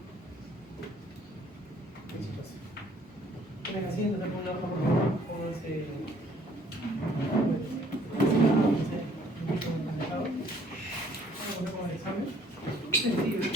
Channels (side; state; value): both; normal; correlation 0.59